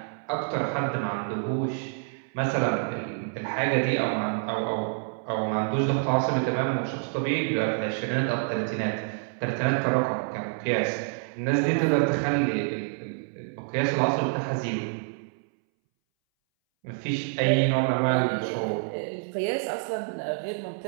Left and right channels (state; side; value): silent; left; 60 dB below the other